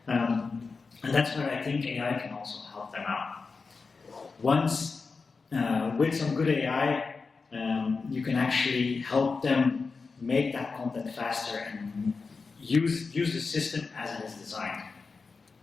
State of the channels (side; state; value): right; quieter; 4.5 dB